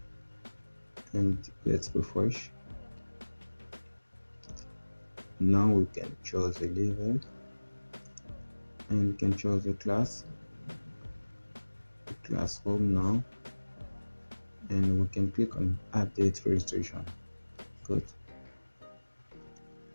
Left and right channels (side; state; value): both; inverted; correlation -1.00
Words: And let's refresh. Now we can choose a level, and we can choose a class, classroom now, and we can click on update registration. Good.